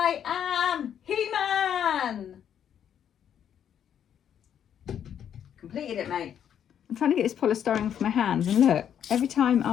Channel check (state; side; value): quieter; right; 9.1 dB